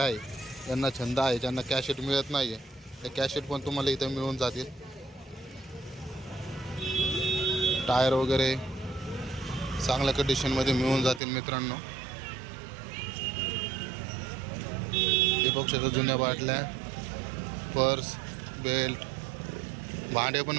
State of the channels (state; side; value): drops out; left; at 11.2 s